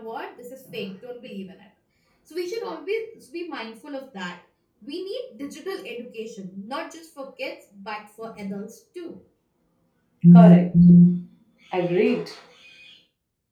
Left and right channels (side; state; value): both; identical; correlation 1.00